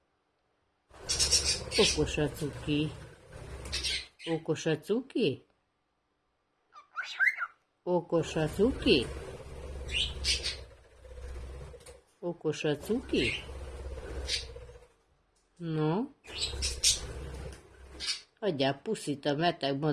Okos a cuki. Okos a cuki? Okos a cuki? Okos a cuki? No? Adjál puszit a beteg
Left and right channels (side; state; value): both; identical; correlation 1.00